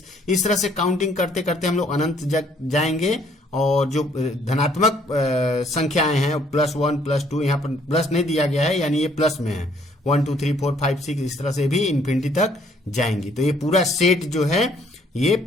इस तरह से काउंटिंग करते करते हम लोग अनंत जाएंगे। और जो धनात्मक संख्याएं हैं +1 +2, यहाँ पर प्लस नहीं दिया गया है यानी ये प्लस में है, 1 2 3 4 5 6, इस तरह से भी इन्फिनिटी तक जाएंगी। तो ये पूरा सेट जो है ये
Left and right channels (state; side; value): normal; both; correlation 0.64